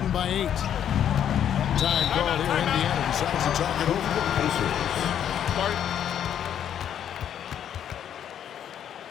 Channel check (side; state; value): right; quieter; 9.6 dB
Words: by 8. Time called here. Indiana decides to talk it over to the Pacers.